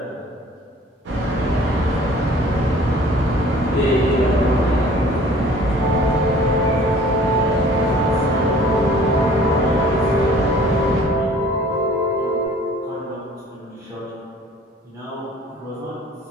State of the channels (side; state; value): both; normal; correlation 0.51